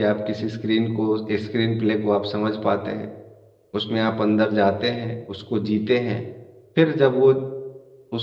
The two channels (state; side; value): identical; both; correlation 1.00